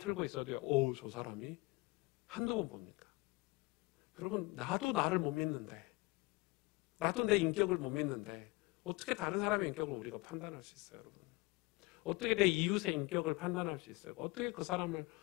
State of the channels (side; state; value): right; quieter; 24.2 dB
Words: 있어도요. 저 사람이 한두 번 봅니까? 여러분 나도 나를 못 믿는데, 나도 내 인격을 못 믿는데 어떻게 다른 사람의 인격을 우리가 판단할 수 있어요, 여러분? 어떻게 내 이웃의 인격을 판단할 수 있어요? 어떻게 그 사람을